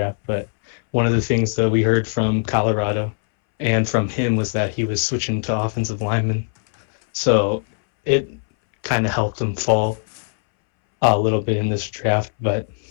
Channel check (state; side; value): silent; right; 63 dB below the other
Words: But one of the things that we heard from Colorado and from him was that he was switching to offensive lineman. So it kind of helped him fall a little bit in this draft. But